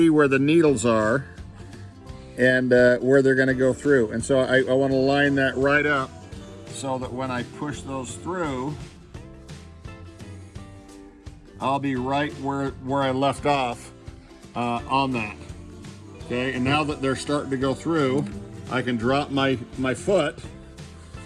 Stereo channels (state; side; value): identical; both; correlation 1.00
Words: where the needles are and where they're gonna go through. And so I wanna line that right up so that when I push those through, I'll be right where I left off on that. Okay, and now that they're starting to go through, I can drop my foot